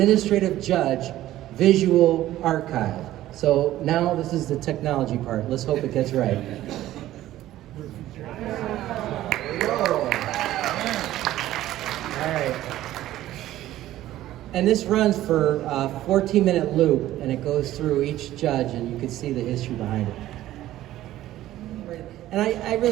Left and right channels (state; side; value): quieter; left; 14.3 dB